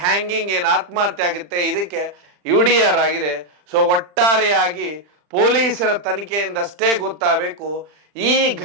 ಹ್ಯಾಂಗಿಂಗ್ ಏನು ಆತ್ಮಹತ್ಯೆ ಆಗುತ್ತೆ, ಇದಕ್ಕೆ UDR ಆಗಿದೆ. ಸೊ ಒಟ್ಟಾರೆಯಾಗಿ ಪೊಲೀಸರ ತನಿಖೆಯಿಂದಷ್ಟೇ ಗೊತ್ತಾಗಬೇಕು ಈ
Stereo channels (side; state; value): left; late; 40 ms